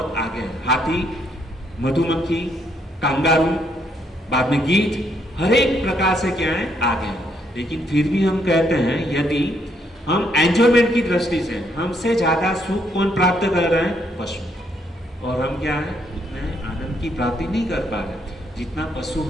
आगे है। हाथी, मधुमक्खी, कांगारू, बाद में गीध, हर एक प्रकार से क्या है, आगे है। लेकिन फिर भी हम कहते हैं, यदि हम एंजॉयमेंट की दृष्टि से हमसे ज्यादा सुख कौन प्राप्त कर रहे हैं, पशु। और हम क्या है, उतने आनंद की प्राप्ति नहीं कर पा रहे जितना पशु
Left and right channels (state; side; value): normal; both; correlation 0.72